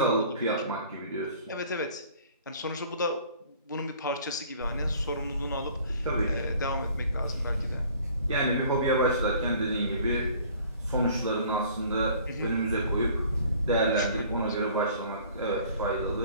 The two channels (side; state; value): both; inverted; correlation -0.52